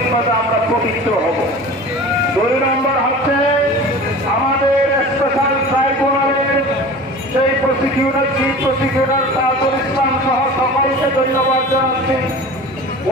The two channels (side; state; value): both; normal; correlation 0.38